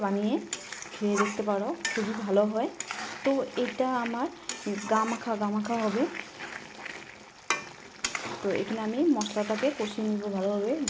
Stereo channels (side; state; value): both; identical; correlation 1.00